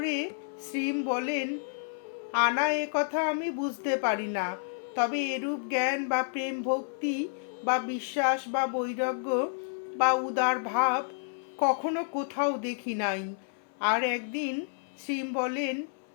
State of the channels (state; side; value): silent; right; 58 dB below the other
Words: শ্রীম বলেন, আনা এ কথা আমি বুঝতে পারি না, তবে এরূপ জ্ঞান বা প্রেম ভক্তি বা বিশ্বাস বা বৈরাগ্য বা উদার ভাব কখনো কোথাও দেখি নাই। আর একদিন শ্রীম বলেন,